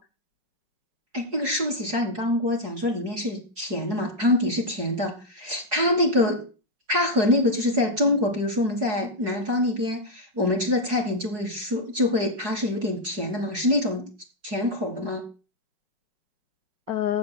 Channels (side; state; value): left; late; 4.7 ms